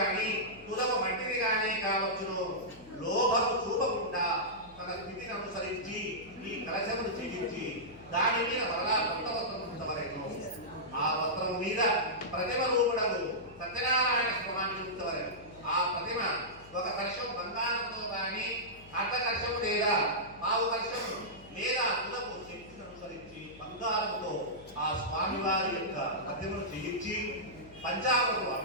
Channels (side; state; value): left; noise; hum, 22 dB below the sound